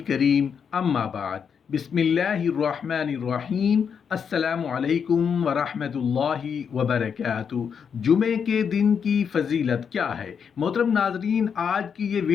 اما بعد بسم اللہ الرحمن الرحیم السلام علیکم ورحمۃ اللہ وبرکاتہ۔ جمعے کے دن کی فضیلت کیا ہے؟ محترم ناظرین، آج کی یہ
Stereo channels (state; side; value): quieter; right; 6.9 dB